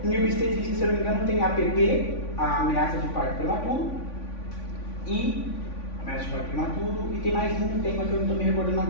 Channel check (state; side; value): late; right; 3.5 ms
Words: Em obstetrícia, se eu não me engano, tem APP, a ameaça de parto prematuro, e tem mais um tema que eu não estou me recordando